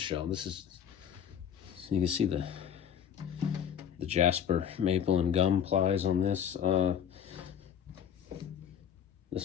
This is, so you can see the jasper maple and gum plies on this.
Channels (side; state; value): right; quieter; 8.7 dB